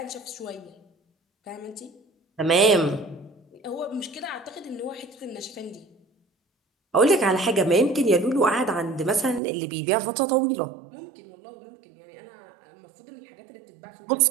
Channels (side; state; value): left; drops out; at 9.4 s